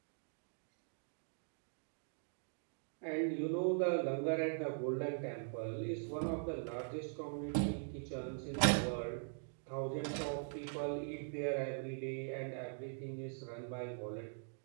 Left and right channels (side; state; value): left; silent; digital silence